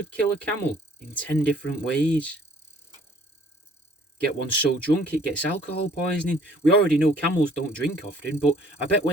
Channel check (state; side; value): normal; both; correlation 0.57